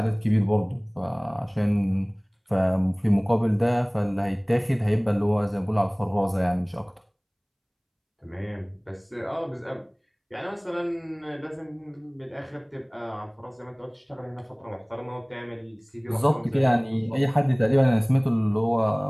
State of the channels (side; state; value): both; identical; correlation 1.00